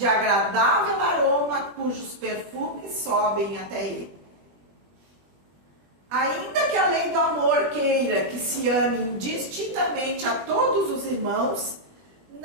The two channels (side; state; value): left; late; 21 ms